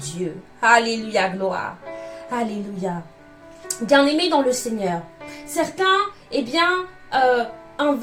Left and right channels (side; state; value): both; identical; correlation 1.00